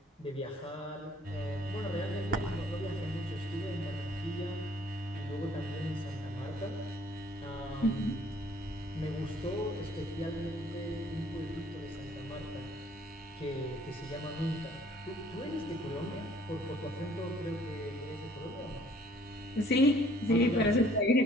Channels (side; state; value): both; normal; correlation 0.59